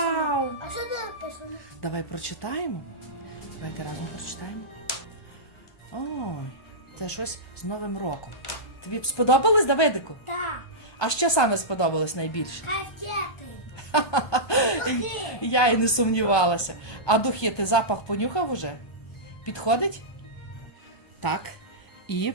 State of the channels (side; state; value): right; late; 1.2 ms